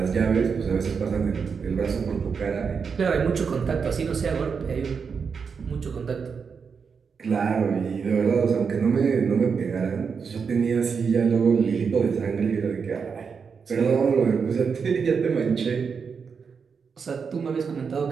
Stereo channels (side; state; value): left; quieter; 5.9 dB